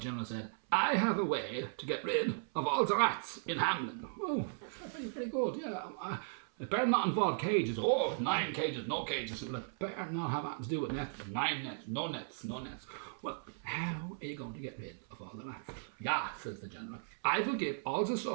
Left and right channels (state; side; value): silent; left; 53 dB below the other